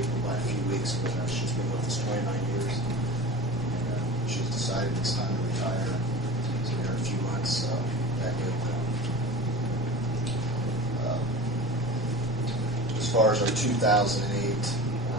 by a few weeks, but she's been with us 29 years. And she's decided it's time to retire. So in a few months, that will come. As far as our 2008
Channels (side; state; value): both; normal; correlation 0.34